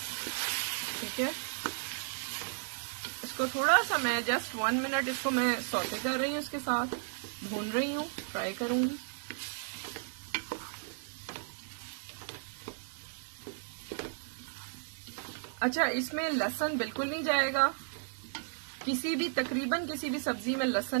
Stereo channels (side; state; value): left; silent; 55 dB below the other